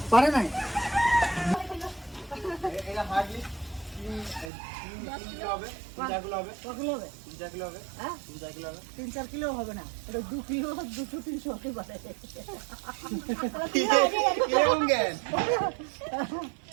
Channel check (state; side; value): drops out; left; at 4.5 s